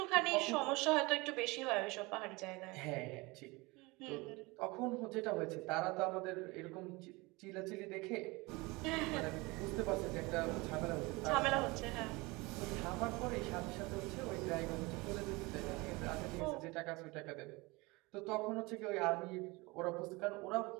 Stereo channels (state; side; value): quieter; left; 24.2 dB